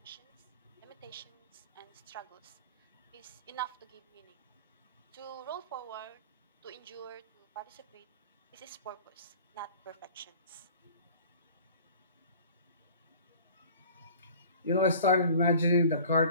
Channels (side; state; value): both; inverted; correlation -0.46